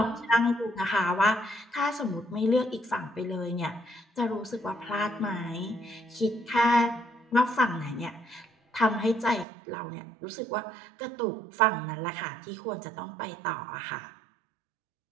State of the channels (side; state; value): left; drops out; at 9.5 s